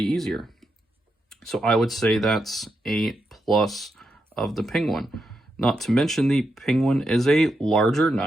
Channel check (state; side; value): normal; both; correlation 0.84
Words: easier. So I would say that's a plus of the Penguin. Not to mention the Penguin is a larger